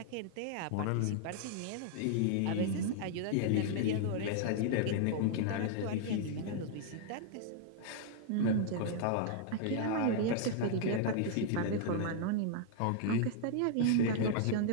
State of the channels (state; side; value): different; both; correlation -0.01